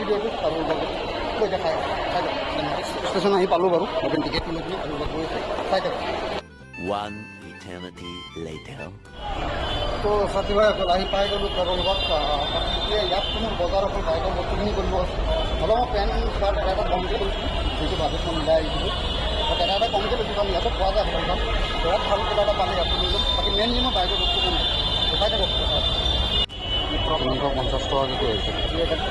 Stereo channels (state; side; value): identical; both; correlation 1.00